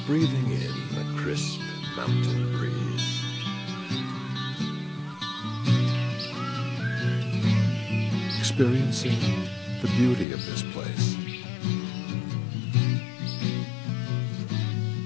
Breathing in the crisp mountain breeze. Experiencing the beauty of this place.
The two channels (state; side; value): drops out; right; at 10.2 s